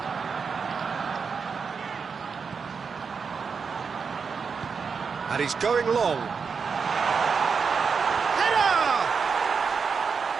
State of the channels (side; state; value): left; quieter; 5.6 dB